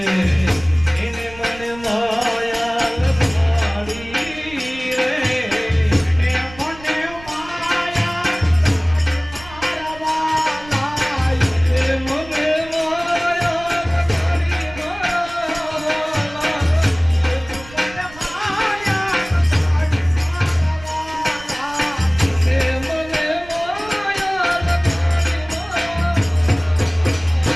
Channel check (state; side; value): noise; right; rumble, 19 dB below the sound